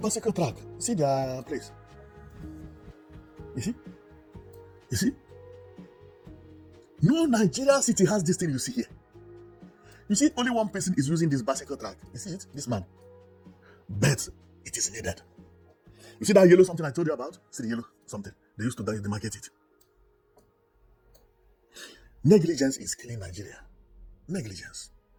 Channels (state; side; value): identical; both; correlation 1.00